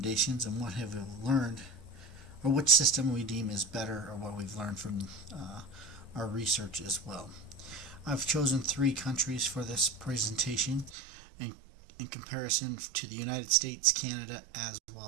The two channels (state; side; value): drops out; left; at 11.0 s